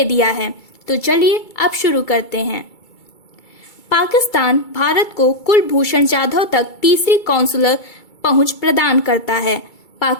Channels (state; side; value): late; right; 2.3 ms